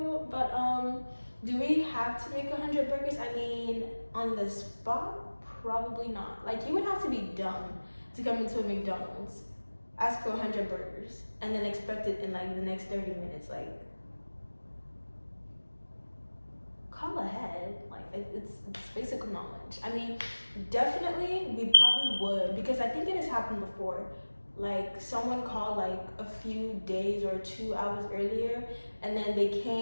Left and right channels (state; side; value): inverted; both; correlation -1.00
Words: But do we have to make 100 burgers? I mean, on the spot, probably not. Like, you would have to be dumb to come into a McDonald's ask for 100 burgers and then expect it in like the next 30 minutes. Like, call ahead. Like, it's basic knowledge. I mean, definitely we probably would, because I think it has happened before. Like, someone called like a few days or 2 hours earlier, and then they